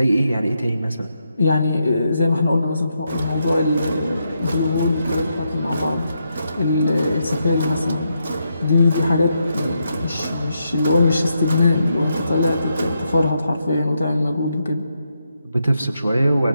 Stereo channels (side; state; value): both; inverted; correlation -0.82